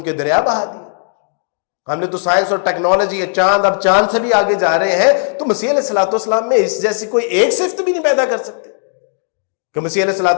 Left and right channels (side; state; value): right; silent; digital silence